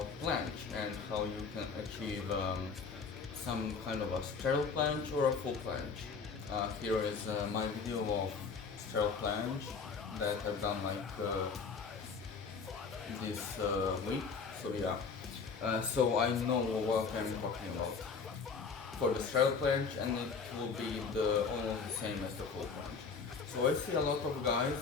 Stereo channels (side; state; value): right; quieter; 5.2 dB